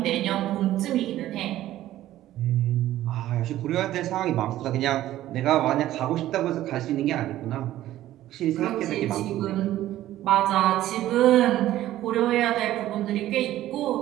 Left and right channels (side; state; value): left; quieter; 14.0 dB